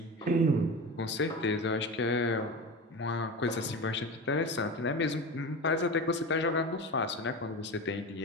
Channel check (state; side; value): normal; both; correlation 0.27